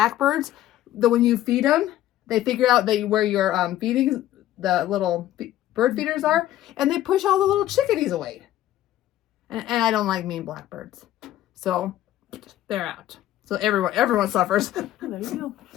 that when you feed them, they figure out where your feeding the little bird feeders are, and they push all the little chickadees away. And I don't like mean blackbirds, so they're out. So everyone suffers. Oh, there you go.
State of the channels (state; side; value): quieter; right; 13.5 dB